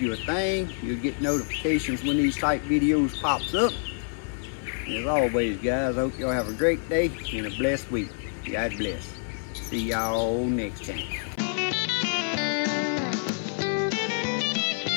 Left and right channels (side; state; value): right; silent; 60 dB below the other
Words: a thing. You'll get notifications when these type videos pops up. And as always, guys, I hope y'all have a great day and a blessed week. God bless. See y'all next time.